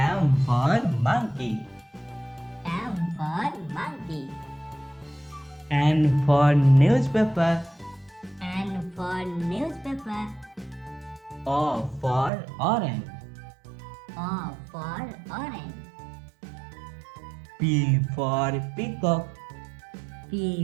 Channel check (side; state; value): left; drops out; at 12.3 s